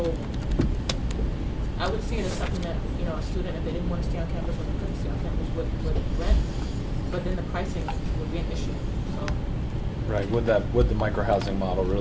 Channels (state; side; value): identical; both; correlation 1.00